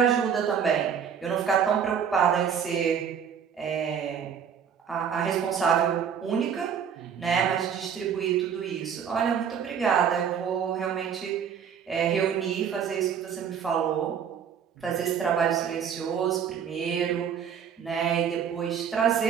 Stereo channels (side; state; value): left; quieter; 7.7 dB